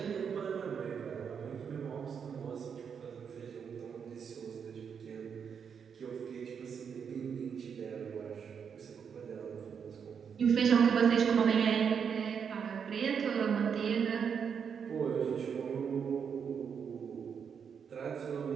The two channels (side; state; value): left; quieter; 7.0 dB